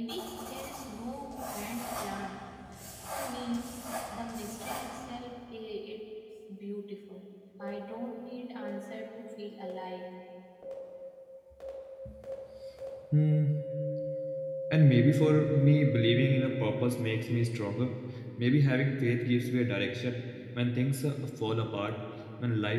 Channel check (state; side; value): identical; both; correlation 1.00